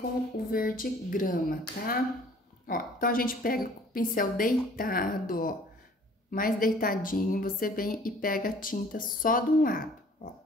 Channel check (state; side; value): normal; both; correlation 0.53